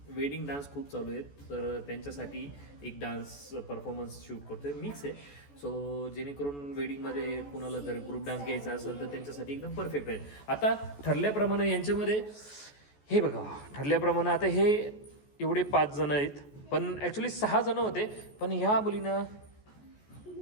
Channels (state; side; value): late; right; 14 ms